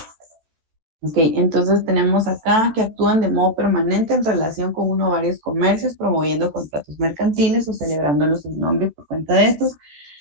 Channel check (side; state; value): left; late; 14 ms